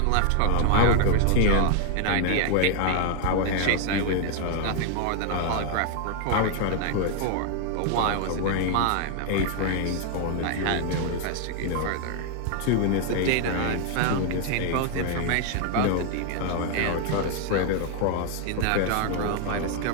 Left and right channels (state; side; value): different; both; correlation 0.00